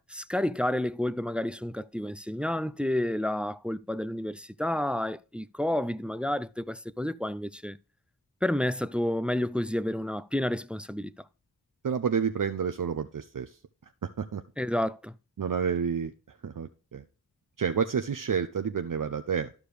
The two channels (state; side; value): normal; both; correlation 0.53